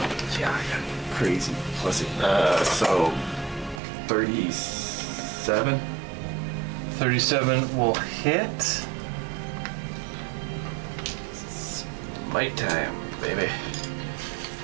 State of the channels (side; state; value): left; drops out; at 3.8 s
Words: Yeah, I got crazy plus so 37. 37 will hit. Smite time, baby.